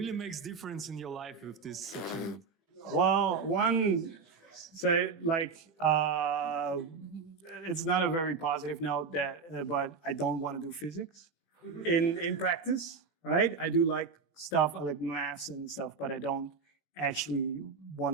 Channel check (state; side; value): quieter; left; 5.1 dB